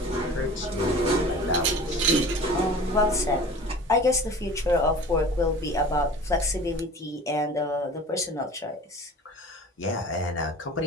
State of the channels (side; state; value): both; normal; correlation 0.41